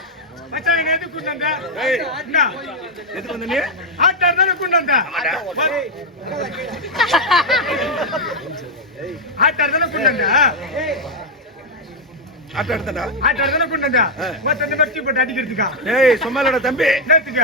மச்சான் என்ன எதுக்கு கொண்டு வந்த? ஏய் என்ன எதுக்கு வந்த நீ ஆட்டார் தானே கொண்டு வந்த? ஆட்டார் தானே கொண்டு வந்த? ஆட்ட எடுத்தடா ஆட்டார் தானே கொண்டு வந்த? மத்த இந்த மெட்டி போட்டு அடிக்கிறதுக்கா? ஏய் சும்மாலடா தம்பி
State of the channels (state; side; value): normal; both; correlation 0.00